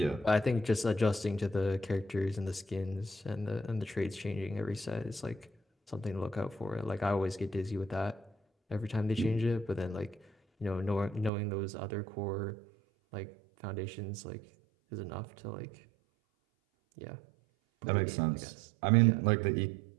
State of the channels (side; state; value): left; drops out; at 11.3 s